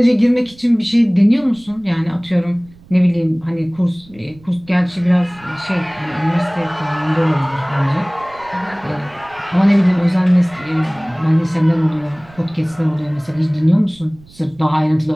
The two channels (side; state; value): right; noise; rumble, 25 dB below the sound